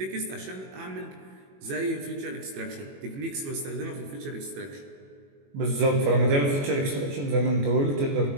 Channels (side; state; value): left; late; 21 ms